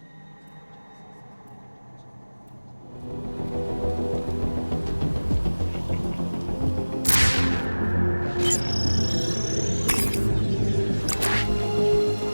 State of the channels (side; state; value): both; inverted; correlation -1.00